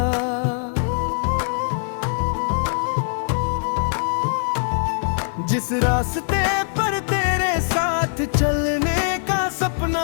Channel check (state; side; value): silent; right; digital silence